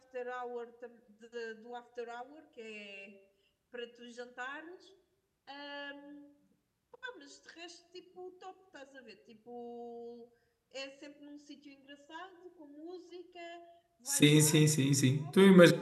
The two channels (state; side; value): identical; both; correlation 1.00